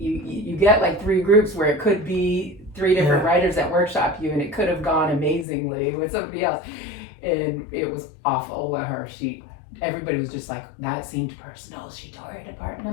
get like 3 groups where it could be 3 different writers that workshop you, and it could have gone amazingly with somebody else. And it was awful with her. Everybody was just like, that seemed personal. She tore it apart. And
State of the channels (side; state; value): right; drops out; at 5.5 s